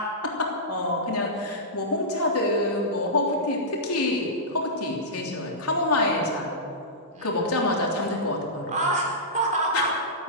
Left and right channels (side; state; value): both; normal; correlation -0.15